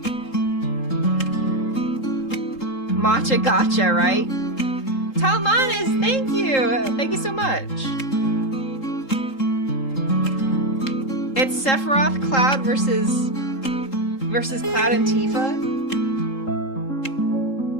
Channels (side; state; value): right; late; 3.8 ms